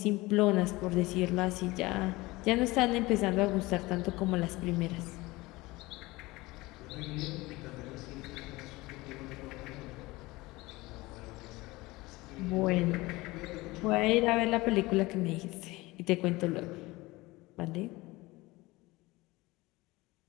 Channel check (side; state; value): right; quieter; 21.0 dB